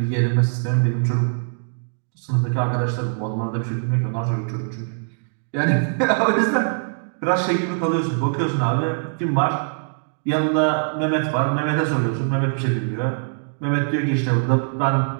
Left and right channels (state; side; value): silent; left; digital silence